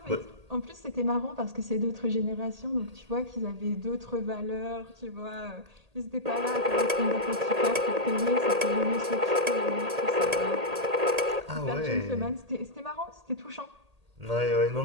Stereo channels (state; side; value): late; left; 1.8 ms